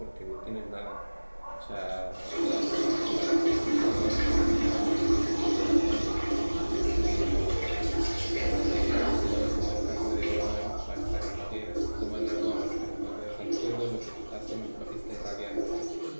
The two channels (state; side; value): inverted; both; correlation -1.00